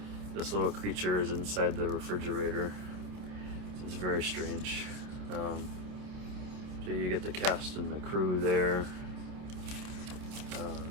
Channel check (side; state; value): left; late; 28 ms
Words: this little creature is inside the refrigerator. It's very strange. So you get the cast and the crew there.